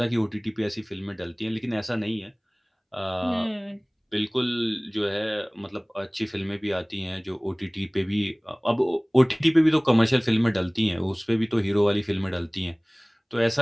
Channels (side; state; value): both; identical; correlation 1.00